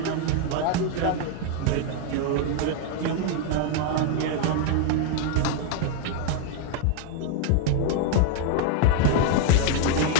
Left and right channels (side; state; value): both; different; correlation 0.00